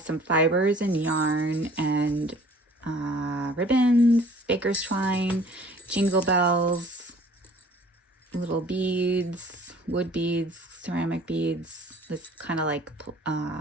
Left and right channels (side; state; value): both; normal; correlation 0.52